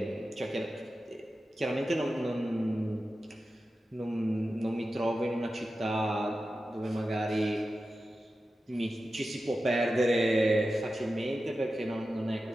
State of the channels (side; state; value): both; normal; correlation 0.92